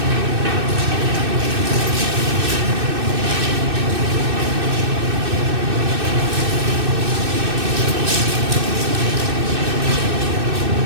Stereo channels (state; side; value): late; left; 2.6 ms